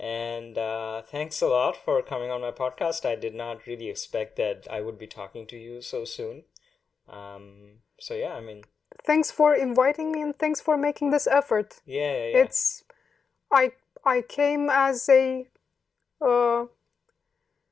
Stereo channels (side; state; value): right; quieter; 5.7 dB